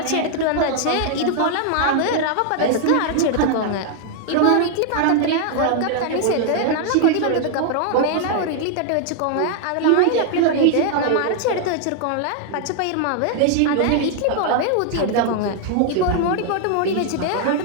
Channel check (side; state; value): both; different; correlation 0.00